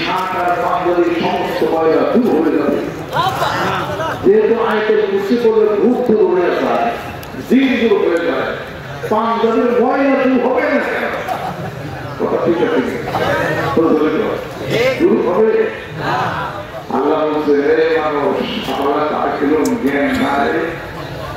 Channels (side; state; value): both; identical; correlation 1.00